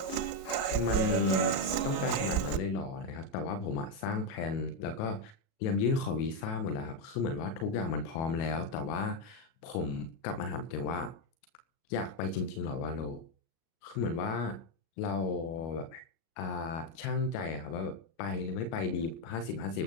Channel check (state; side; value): late; right; 37 ms